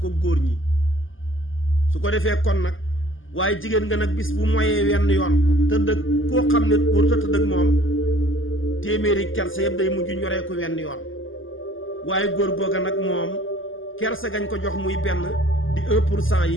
goor ñi su ko défé kon nak waye jigen nga nak bis bu moyé wenn yoon teud ak ko xamné wur ta teud ak mom téméri kersa yépp day muju ñoré ko wenn yoon waye goor goga nak mom kersa gañ ko jox muy ben di 1%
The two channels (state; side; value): late; right; 0.58 ms